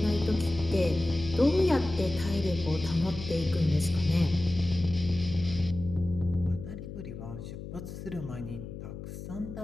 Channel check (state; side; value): noise; left; hum, 10 dB below the sound